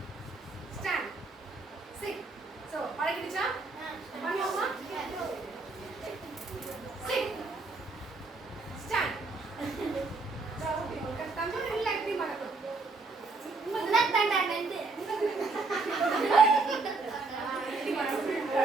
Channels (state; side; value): quieter; left; 3.7 dB